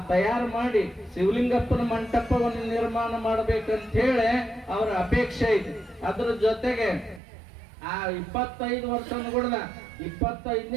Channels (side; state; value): left; drops out; at 7.2 s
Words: ತಯಾರು ಮಾಡಿ ಶಿವಲಿಂಗಪ್ಪನ ಮಂಟಪವನ್ನು ನಿರ್ಮಾಣ ಮಾಡ್ಬೇಕಂತ ಹೇಳಿ ಅವ್ರ ಅಪೇಕ್ಷೆ ಐತಿ. ಅದ್ರ ಜೊತೆಗೆ ಆ 25 ವರ್ಷ ಅನ್ಕೊಡ್ದ